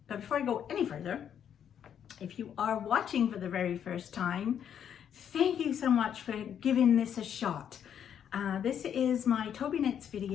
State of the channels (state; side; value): quieter; right; 8.8 dB